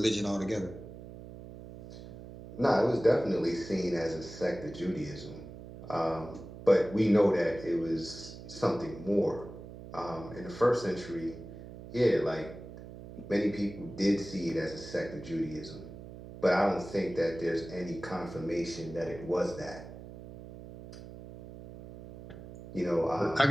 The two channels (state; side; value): noise; right; hum, 14 dB below the sound